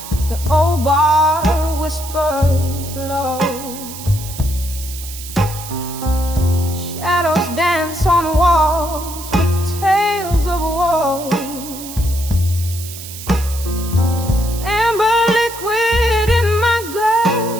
the old bar whispers low. Shadows dance on walls with tales of woe. Amber liquid in my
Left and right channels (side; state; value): right; noise; hiss, 12 dB below the sound